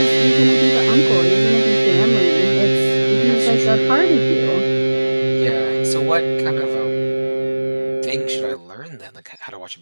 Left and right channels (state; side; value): inverted; both; correlation -1.00